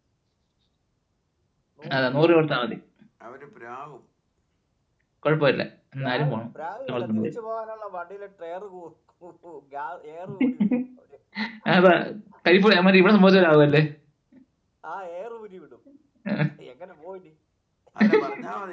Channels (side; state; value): both; identical; correlation 1.00